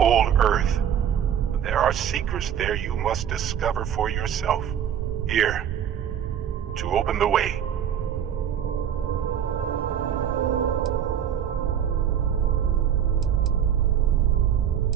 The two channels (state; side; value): quieter; left; 9.3 dB